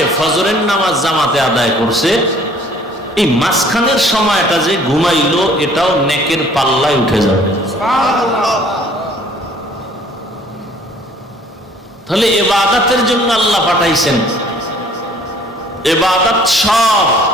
ফজরের নামাজ জামাতে আদায় করছে, এই মাঝখানের সময়টা যে ঘুমাইলো এটাও নেকের পাল্লায় উঠে যাবে। তাহলে ইবাদতের জন্য আল্লাহ পাঠাইছেন। ইবাদত সব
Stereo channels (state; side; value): normal; both; correlation 0.56